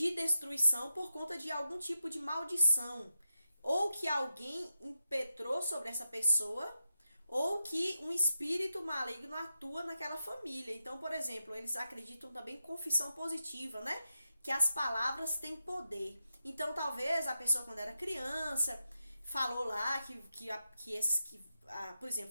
destruição por conta de algum tipo de maldição, ou que alguém impetrou sobre essa pessoa, ou que um espírito maligno atua naquela família. Então, por exemplo, eles acreditam também em confissão positiva, né? Que as palavras têm poder. Então, talvez a pessoa, quando era criança, falou lá por exemplo,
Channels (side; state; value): both; inverted; correlation -0.89